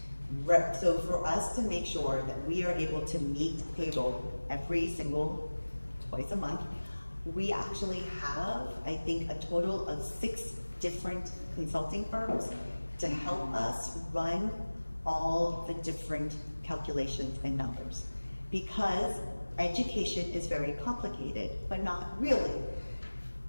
So for us to make sure that we are able to meet payroll twice a month, we actually have, I think, a total of 6 different consulting firms to help us run all the different calculations and numbers. Because education is very complicated, but not really.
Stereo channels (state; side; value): inverted; both; correlation -1.00